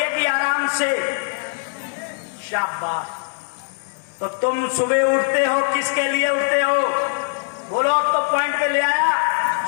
कि आराम से? शाबाश। तो तुम सुबह उठते हो, किसके लिए उठते हो? बोलो, अब तो पॉइंट पे ले आया।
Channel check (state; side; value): silent; right; 65 dB below the other